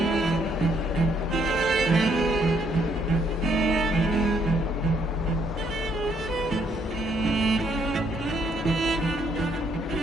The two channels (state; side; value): normal; both; correlation 0.70